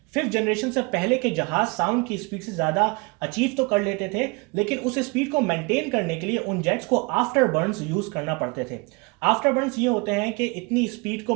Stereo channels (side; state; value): left; quieter; 28.2 dB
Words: 5th जनरेशन से पहले के जहाज साउंड की स्पीड से ज्यादा अचीव तो कर लेते थे, लेकिन उस स्पीड को मेंटेन करने के लिए उन जेट्स को आफ्टर बर्न्स यूज करना पड़ते थे। आफ्टर बर्न्स ये होते हैं कि इतनी स्पीड को